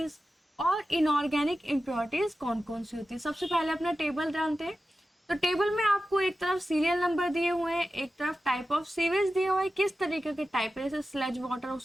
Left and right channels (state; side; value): normal; both; correlation 0.93